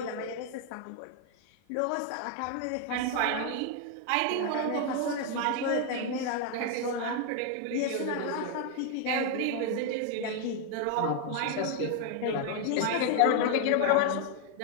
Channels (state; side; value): different; both; correlation 0.00